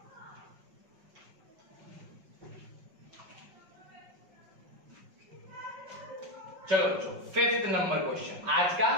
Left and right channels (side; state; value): left; late; 5.5 ms